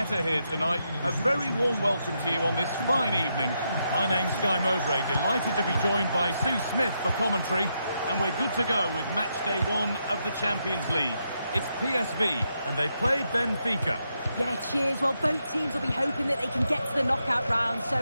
here tonight. A very warm welcome to you on this fine evening. My name's Guy Mowbray, delighted to be joined by Sue Smith for commentary. And we're good to go with match day 1 of the Champions League. It's PSV, and they play Benfica. Yeah, cheers. Well, both teams will be hoping that they can get to the knockout round, so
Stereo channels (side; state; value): both; inverted; correlation -0.81